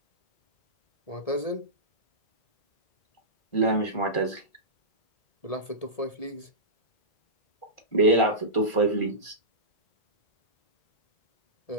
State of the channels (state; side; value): late; right; 1.5 ms